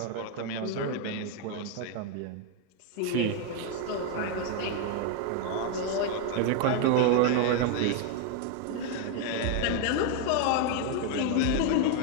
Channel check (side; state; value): both; different; correlation 0.01